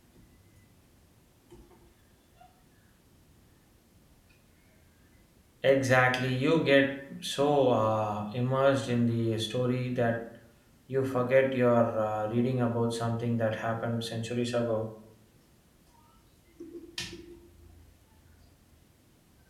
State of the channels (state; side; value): identical; both; correlation 1.00